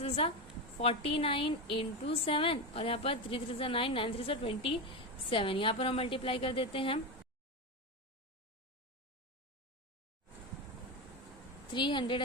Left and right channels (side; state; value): both; normal; correlation 0.16